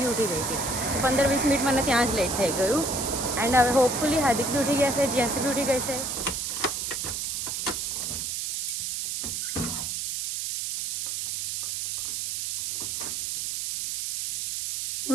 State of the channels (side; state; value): right; noise; hiss, 3 dB below the sound